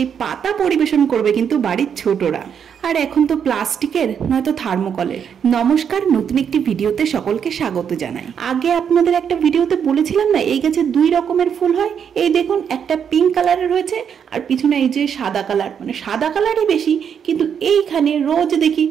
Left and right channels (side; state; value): left; quieter; 7.7 dB